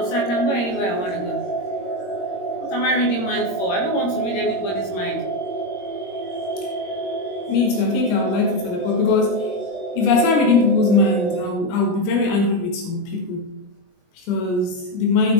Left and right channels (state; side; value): late; right; 21 ms